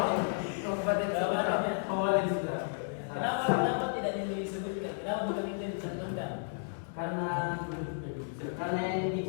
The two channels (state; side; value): silent; right; digital silence